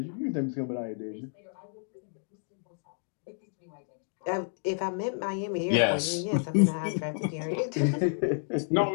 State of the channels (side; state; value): right; silent; digital silence